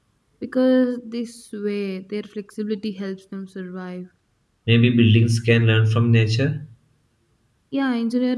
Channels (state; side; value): identical; both; correlation 1.00